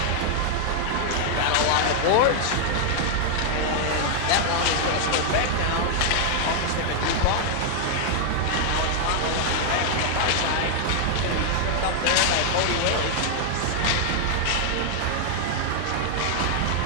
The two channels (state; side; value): different; both; correlation 0.00